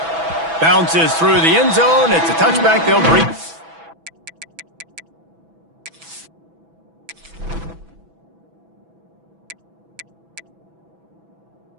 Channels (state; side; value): late; left; 6.1 ms